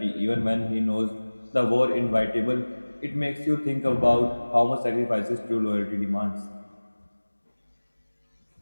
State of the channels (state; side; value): inverted; both; correlation -1.00